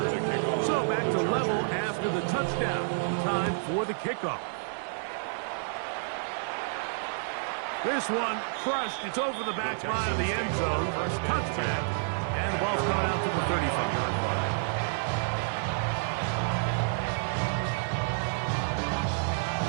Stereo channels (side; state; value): left; silent; digital silence